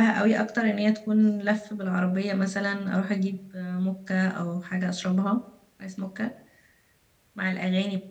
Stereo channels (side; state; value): both; identical; correlation 1.00